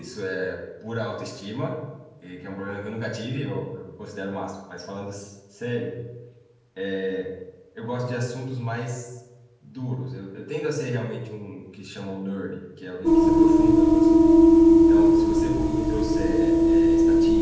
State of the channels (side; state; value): both; identical; correlation 1.00